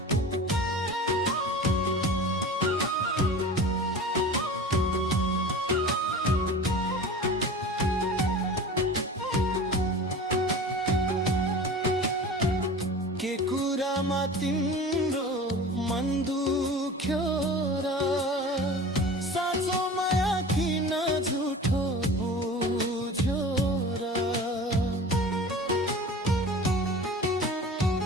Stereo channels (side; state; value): both; normal; correlation 0.37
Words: के कुरामा तिम्रो मन दुख्यो र साँचो माया किन झुठो बुझ्यो र।